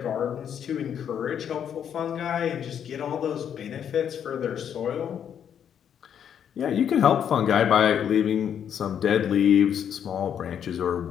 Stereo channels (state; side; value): quieter; right; 8.7 dB